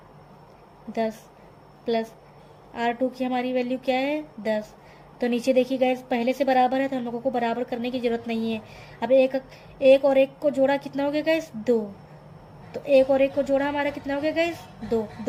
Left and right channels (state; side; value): identical; both; correlation 1.00